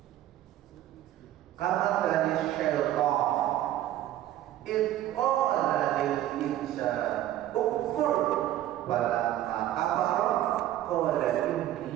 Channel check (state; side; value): quieter; left; 13.1 dB